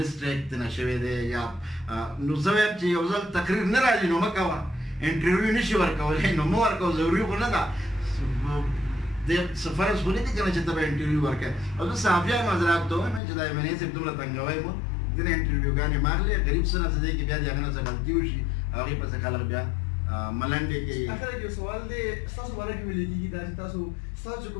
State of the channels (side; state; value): right; drops out; at 13.2 s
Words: ترنه شوی دی یا نو زه وایم چې یو ځل تقریر نه راځي نو مه کوه. انټرویو نشي ورکولی نو مه ورکوه. ضروري خو نه ده د فرض خو نه دي که نه چې ته به انټرویو ورکوې. او زه صحافیان حضرات ته وایم چې دا ایم این اے صاحب دومره تنګوی مو ځینې انټرویوګانې مه اخلئ. غریب څه نه څه دی کې بیا د هغه نه څه غلطي وشي هغې پسې خلک بیا ملنډې کوي. اخر کې سوال دی ستاسو باره کې ویل کېږي دا چې ستاسو